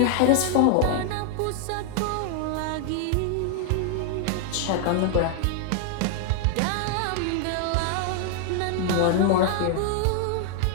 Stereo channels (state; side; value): different; both; correlation 0.00